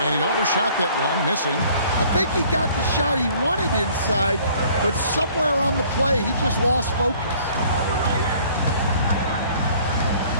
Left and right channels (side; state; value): both; inverted; correlation -0.55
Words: And he overshot that one, missing. I think he got the shot he wanted inside, but somewhere on the play, he just lost focus.